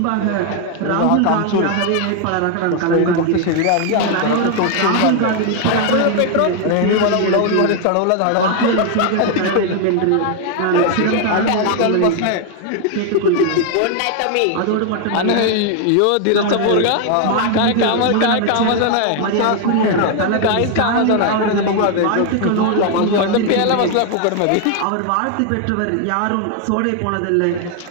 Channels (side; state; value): both; different; correlation 0.00